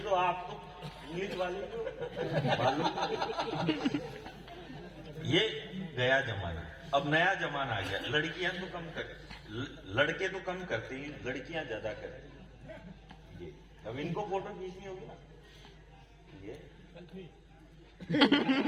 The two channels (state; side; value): identical; both; correlation 1.00